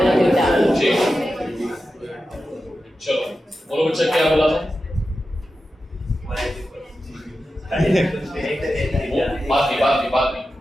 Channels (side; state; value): both; normal; correlation 0.92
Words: चलो बोलो बच्चा क्या बोला था? बात नहीं।